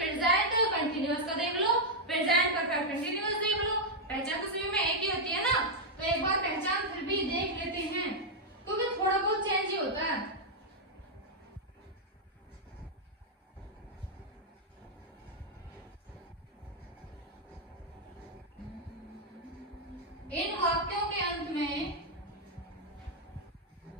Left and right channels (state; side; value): normal; both; correlation -0.03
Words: कंटिन्यूअस का देख लो, प्रेजेंट परफेक्ट कंटिन्यूअस देख लो, पहचान तो सभी में एक ही होती है ना। तो एक बार पहचान फिर भी देख लेते हैं क्योंकि थोड़ा बहुत चेंज ही होता है। इन वाक्यों के अंत में